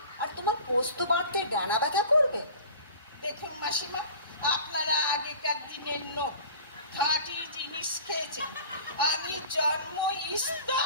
আর তোমার পোস্ত বাটতে ডানা ব্যথা করবে? দেখুন মাসিমা, আপনারা আগেকার দিনের নোট, খাঁটি জিনিস খেয়েছেন। আমি জন্ম ইস্তা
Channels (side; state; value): both; inverted; correlation -0.41